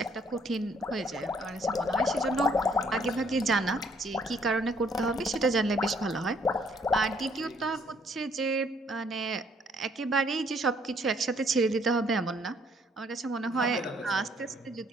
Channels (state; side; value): normal; both; correlation 0.65